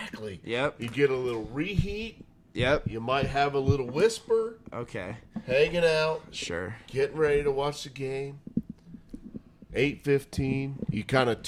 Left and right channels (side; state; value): both; identical; correlation 1.00